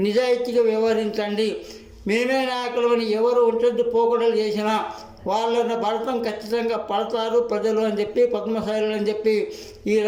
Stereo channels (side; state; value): both; identical; correlation 1.00